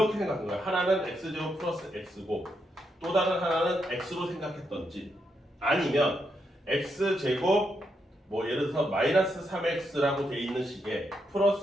생각한 거예요. 하나는 x제곱 플러스 x고 또 다른 하나는 x로 생각했던지 아니면 x제곱 예를 들어서 마이너스 3x라고 돼 있는 식에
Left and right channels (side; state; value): both; normal; correlation 0.81